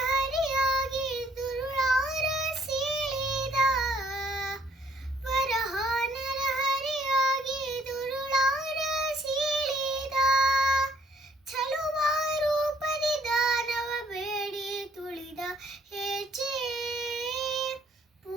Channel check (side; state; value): both; normal; correlation 0.64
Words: ದುರುಳಾರ ಸೀಳಿದ, ವರಹ ನರಹರಿಯಾಗಿ ದುರುಳಾರ ಸೀಳಿದ, ಚಲುವ ರೂಪದಿ ದಾನವ ಬೇಡಿ ತುಳಿದ, ಹೆಜ್ಜೆ